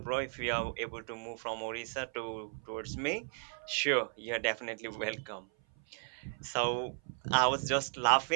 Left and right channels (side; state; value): left; silent; 54 dB below the other